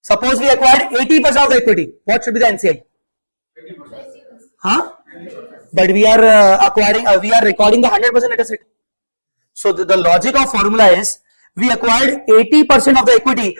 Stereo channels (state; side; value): inverted; both; correlation -1.00